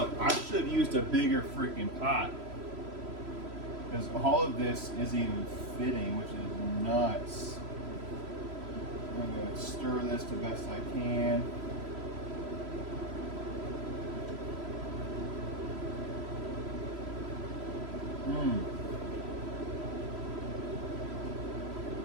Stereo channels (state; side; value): late; left; 3.0 ms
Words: I should have used a bigger freaking pot, because all of this isn't even fitting, which is nuts. I'm going to stir this the best I can.